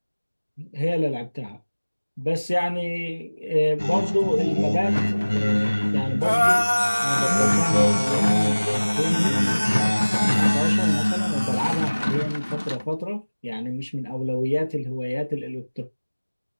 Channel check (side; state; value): both; inverted; correlation -1.00